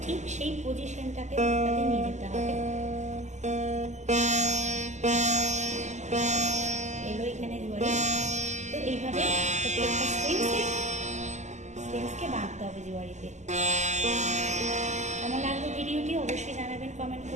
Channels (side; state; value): left; late; 0.34 ms